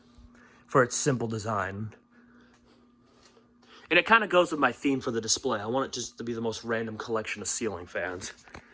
for its simple design. And it kind of goes with my theme for the display. I want it just to be the most random collection of ceiling fans.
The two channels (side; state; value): both; identical; correlation 1.00